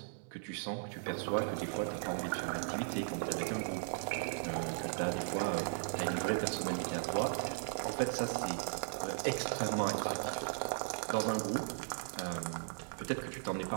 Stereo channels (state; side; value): silent; left; digital silence